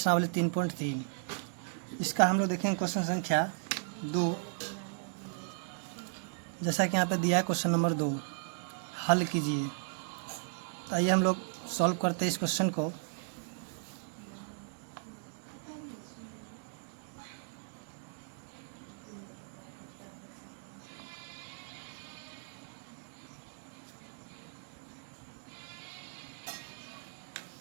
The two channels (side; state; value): left; silent; digital silence